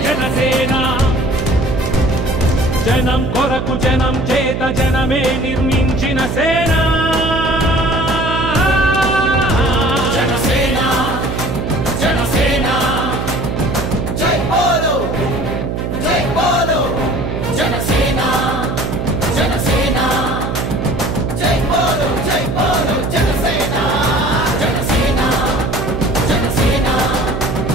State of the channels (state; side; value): noise; right; hum, 3 dB below the sound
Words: జనసేన జనం కొరకు జనం చేత జనమే నిర్మించిన సేన జనసేన జనసేన జై బోలో జనసేన జనసేన జై బోలో జనసేన జనసేన జనసేన